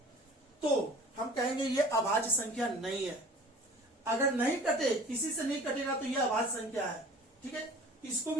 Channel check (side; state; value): both; normal; correlation 0.46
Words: तो हम कहेंगे ये अभाज्य संख्या नहीं है। अगर नहीं कटे, किसी से नहीं कटेगा तो ये अभाज्य संख्या है। ठीक है, इसको